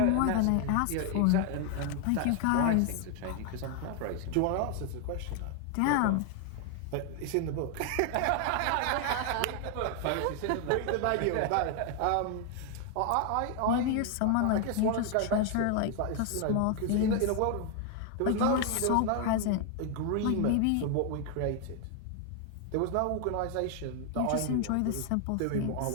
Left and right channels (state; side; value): different; both; correlation 0.00